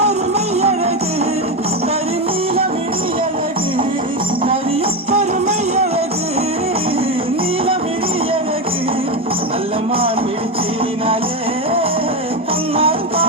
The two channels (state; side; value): normal; both; correlation 0.13